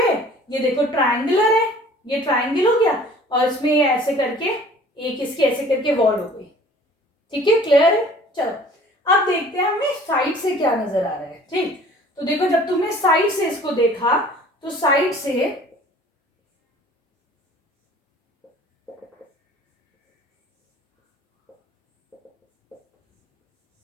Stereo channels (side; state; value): both; normal; correlation 0.50